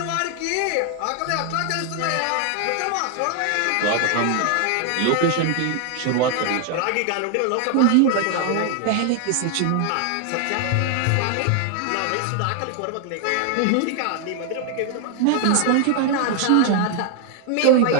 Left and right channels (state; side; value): different; both; correlation 0.00